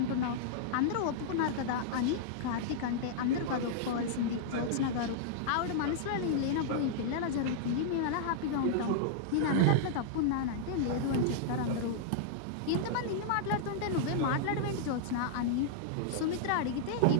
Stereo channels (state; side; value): different; both; correlation -0.02